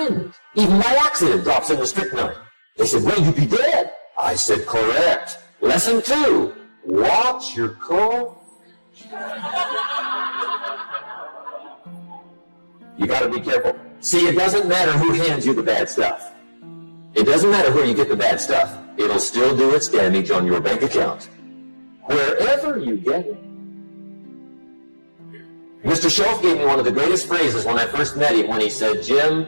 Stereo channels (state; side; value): inverted; both; correlation -1.00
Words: even by accident, drops in the strychnine? They said, well, you'd be dead. I said, correct. Lesson 2. Watch your cough. You got to be careful. See, it doesn't matter who hands you the bad stuff. It doesn't matter where you get the bad stuff. It'll still do its damage on your bank account, wherever you get it. Mr. Shove gave me one of the greatest phrases when I first met him when he said,